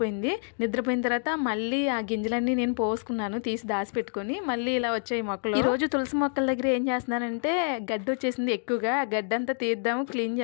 నిద్రపోయిన తర్వాత మళ్ళీ ఆ గింజలన్నీ నేను పోసుకున్నాను, తీసి దాచిపెట్టుకుని. మళ్ళీ ఇలా వచ్చాయి మొక్కలు. ఈ రోజు తులసి మొక్కల దగ్గర ఏం చేస్తున్నానంటే గడ్డి వచ్చేసింది ఎక్కువగా. ఆ గడ్డంతా తీద్దాము, క్లీన్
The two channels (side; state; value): right; silent; 60 dB below the other